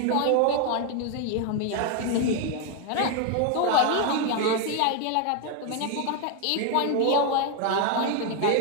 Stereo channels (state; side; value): different; both; correlation 0.01